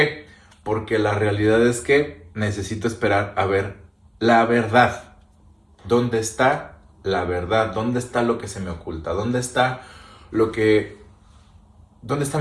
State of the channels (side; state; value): both; identical; correlation 1.00